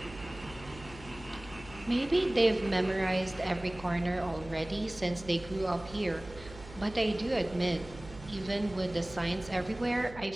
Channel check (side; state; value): right; noise; hum, 17 dB below the sound